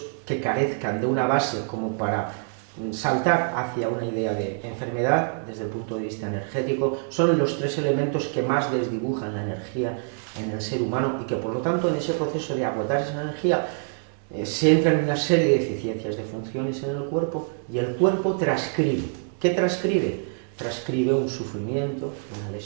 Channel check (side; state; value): left; silent; digital silence